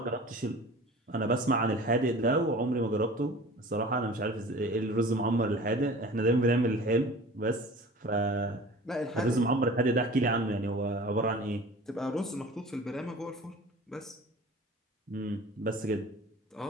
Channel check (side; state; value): both; normal; correlation 0.41